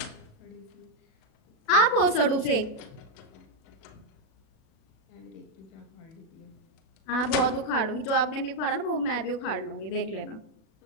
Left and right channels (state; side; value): late; right; 37 ms